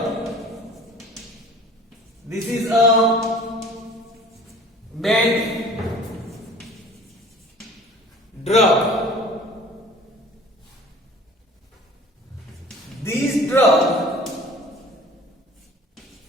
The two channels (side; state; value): both; normal; correlation 0.47